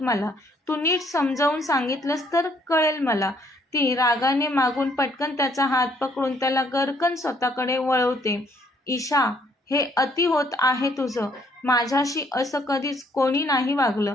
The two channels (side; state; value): both; normal; correlation 0.66